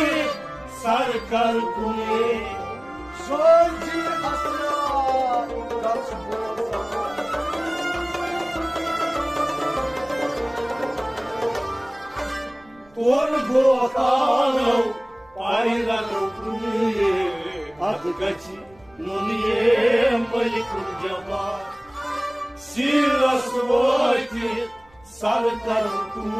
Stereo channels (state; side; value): noise; right; rumble, 29 dB below the sound